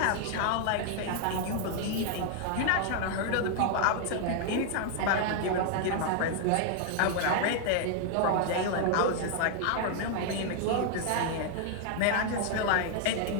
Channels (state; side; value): different; both; correlation 0.00